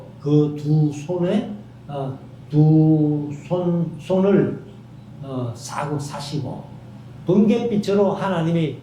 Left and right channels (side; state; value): both; identical; correlation 1.00